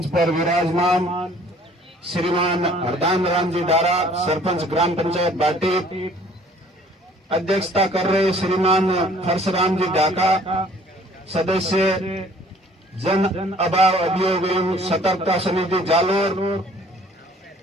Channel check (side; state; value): both; normal; correlation 0.55